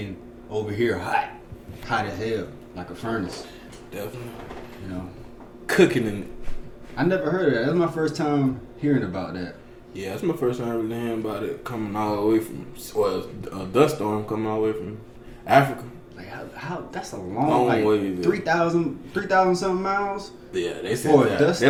over here hot as hell, like a furnace. Definitely. You know, cooking in it. I never heard of that. That's my first time hearing about that. Yeah, that's my first time really hearing about it coming all the way from, well, a dust storm coming all the way from Africa. Like how that's a long like way. 3,000 something miles. Yeah, they said that. They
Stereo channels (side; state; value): both; identical; correlation 1.00